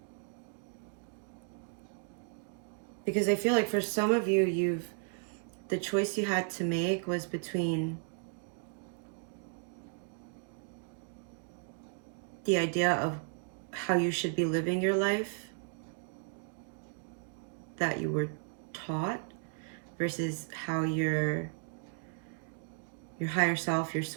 Because I feel like for some of you, the choice you had to make was between the idea of how you should be living your life that you were taught versus how your higher self, your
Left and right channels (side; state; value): left; silent; 55 dB below the other